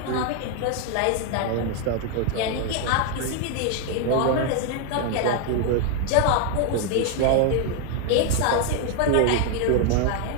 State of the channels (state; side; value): different; both; correlation 0.00